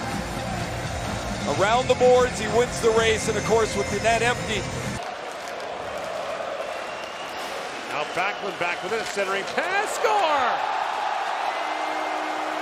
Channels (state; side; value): identical; both; correlation 1.00